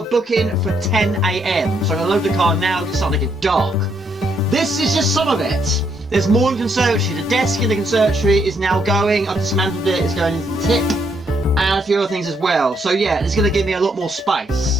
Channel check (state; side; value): normal; both; correlation 0.74